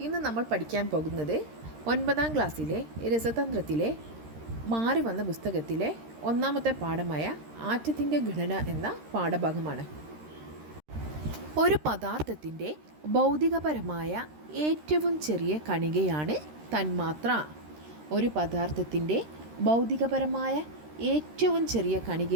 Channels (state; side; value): late; left; 13 ms